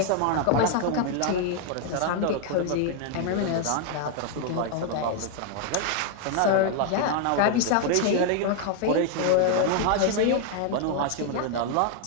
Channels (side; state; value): both; different; correlation 0.00